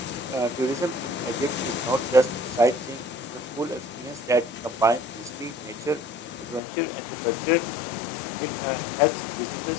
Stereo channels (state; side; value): drops out; right; at 6.6 s